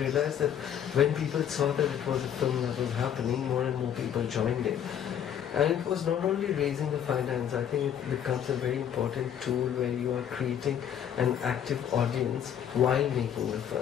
that when people saw that it was a film that was happening, more and more people joined it. And it was not only raising the finance, I think it becomes a very important tool where you are creating an active audience while making the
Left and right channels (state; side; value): quieter; right; 9.3 dB